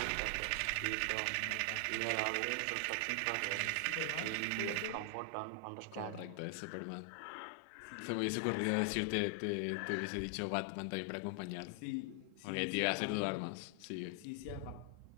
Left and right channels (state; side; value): different; both; correlation 0.00